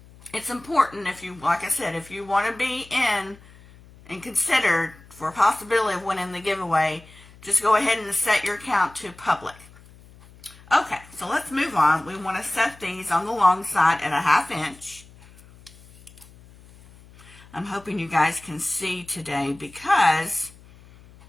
it's important, if you, like I said, if you want to be in and considered for a possibility of winning the giveaway, just go ahead and set your account to public. Okay, so let's move on. We want to set these on the long side at 1/2 inch. I'm hoping you guys can see today because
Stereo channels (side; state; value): left; noise; hum, 23 dB below the sound